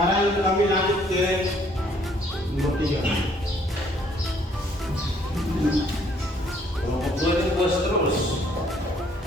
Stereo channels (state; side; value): normal; both; correlation 0.64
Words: kami lanjut ke nomor 3. Kelompok 2 ini puas terus.